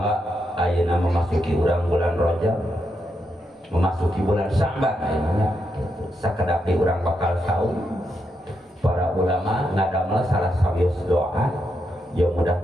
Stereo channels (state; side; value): normal; both; correlation 0.82